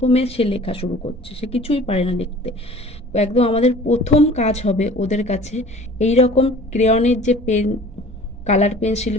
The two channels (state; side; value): normal; both; correlation 0.46